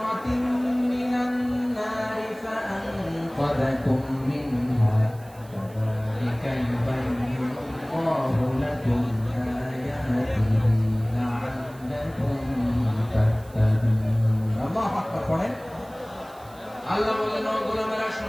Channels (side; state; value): right; noise; hiss, 25 dB below the sound